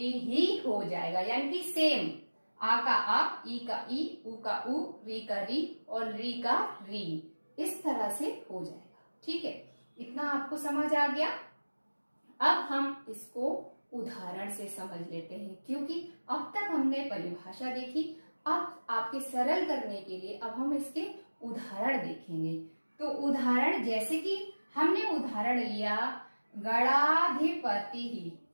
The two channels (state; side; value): inverted; both; correlation -1.00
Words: ही हो जाएगा, यानी कि सेम। आ का आ, ई का ई, उ का उ, री का री और री का री, इस तरह से हो जाएगा। ठीक है, इतना आपको समझ आ गया। अब हम इसको उदाहरण से समझ लेते हैं, क्योंकि अब तक हमने परिभाषा देखी। अब आपके सरल करने के लिए अब हम इसके उदाहरण देखेंगे। तो उदाहरण जैसे कि हमने उदाहरण लिया गणाधिपति ही,